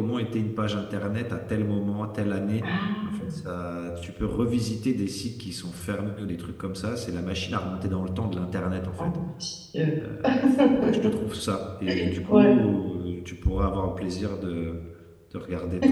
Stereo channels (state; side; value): identical; both; correlation 1.00